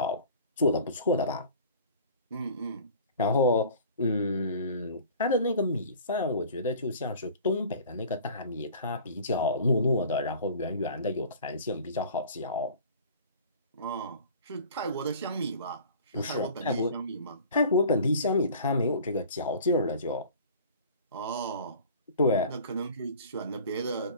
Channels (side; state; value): both; inverted; correlation -0.45